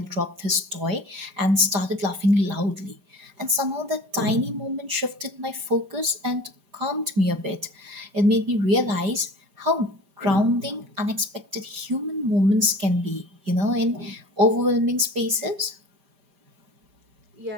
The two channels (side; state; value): left; late; 5.2 ms